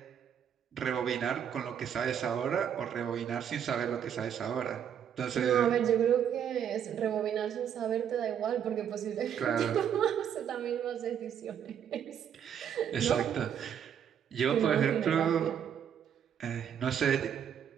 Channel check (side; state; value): left; quieter; 8.7 dB